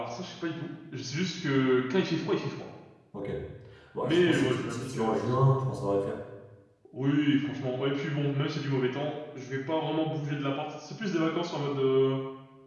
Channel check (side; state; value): both; identical; correlation 1.00